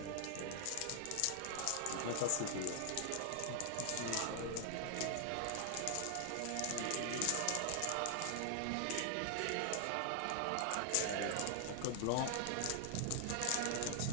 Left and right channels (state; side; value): different; both; correlation 0.00